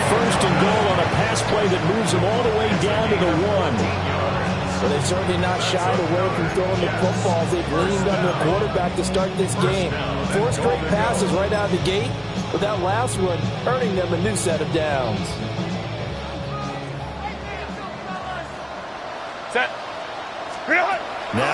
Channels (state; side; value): identical; both; correlation 1.00